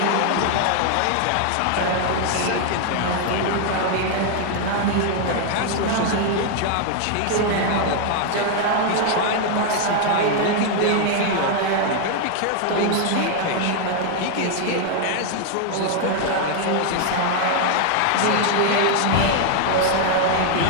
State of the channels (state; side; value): different; both; correlation 0.00